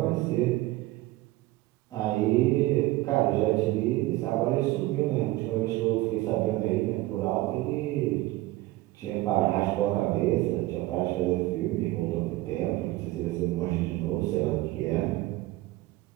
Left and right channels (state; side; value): quieter; left; 18.2 dB